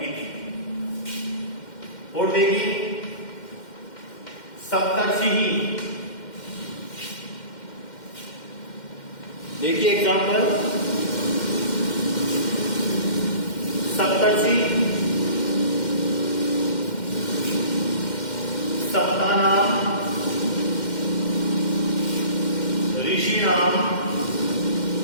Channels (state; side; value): late; right; 2.1 ms